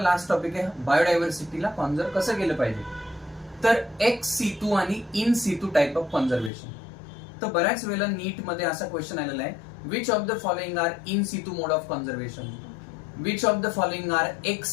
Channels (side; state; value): right; drops out; at 6.5 s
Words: टॉपिक आहे, बायोडायव्हर्सिटीला कॉन्झर्व कसं केलं पाहिजे. तर एक्स सितू आणि in situ type of conservation. तर बऱ्याच वेळेला नीट मध्ये असा क्वेश्चन आलेला आहे, which of the following are in situ mode of conservation, which of the following are ex